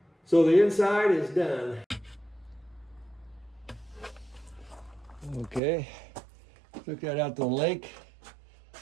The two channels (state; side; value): drops out; left; at 5.6 s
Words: So the inside is done. Okay, took that out to the lake.